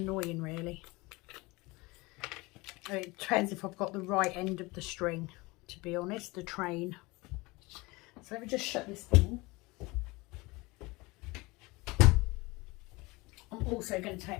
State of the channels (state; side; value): quieter; right; 23.4 dB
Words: really. I mean, it depends if I've got the right end of the string, to be honest, the train. So let me just shut this thing. I'm also going to take